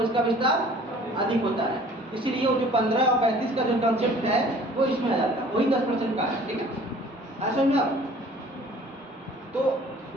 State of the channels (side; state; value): both; normal; correlation 0.51